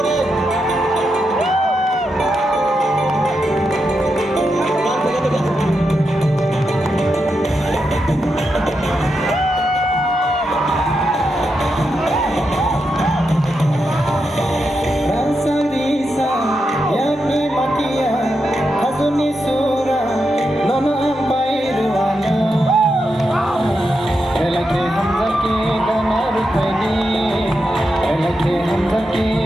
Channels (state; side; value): normal; both; correlation 0.86